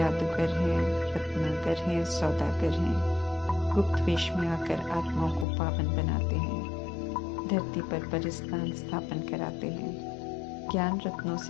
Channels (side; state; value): right; drops out; at 5.5 s